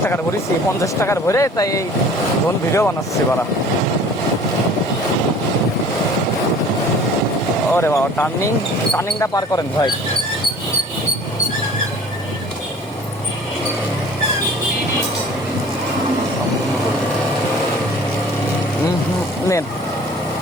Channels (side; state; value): both; normal; correlation 0.47